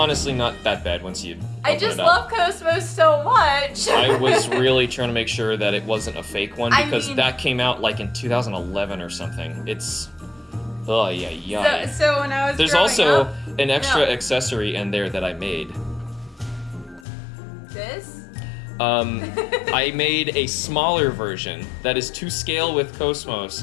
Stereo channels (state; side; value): drops out; right; at 17.1 s